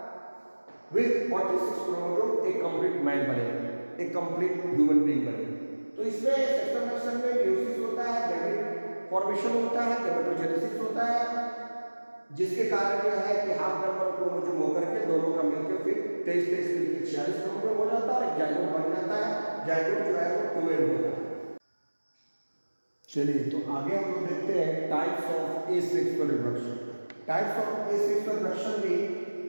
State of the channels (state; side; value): inverted; both; correlation -1.00